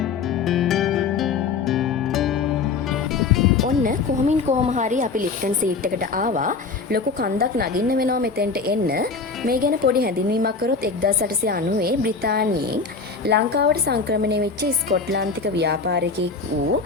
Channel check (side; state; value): right; quieter; 4.7 dB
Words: ඔන්න කොහොමින් කොහොම හරි අපි ලිප්ටන් සීට් එකට ආවා. ලොකු කන්දක් නගින්න වෙනවා මෙතෙන්ට එන්න. මේ ගැන පොඩි හැඳින්වීමක් කරොත් 1890 බ්‍රිතාන්‍යයෙන් ලංකාවට සංක්‍රමණය වෙච්ච ස්කොට්ලන්තික ව්‍යාපාරිකයෙක් වූ